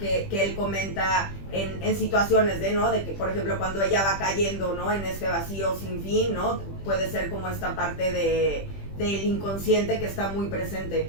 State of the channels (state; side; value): late; right; 20 ms